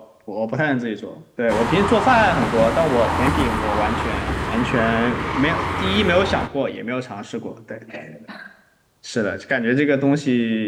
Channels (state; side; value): identical; both; correlation 1.00